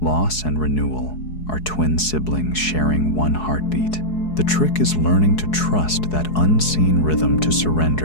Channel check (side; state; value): right; late; 4.7 ms